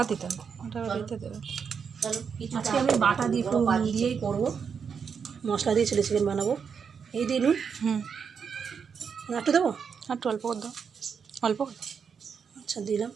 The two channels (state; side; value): quieter; left; 6.5 dB